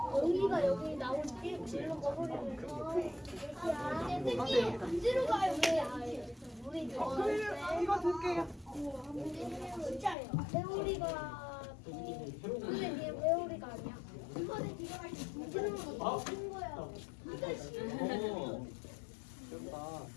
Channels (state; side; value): drops out; right; at 10.2 s